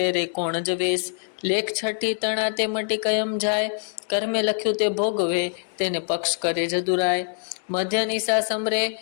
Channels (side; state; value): right; silent; 58 dB below the other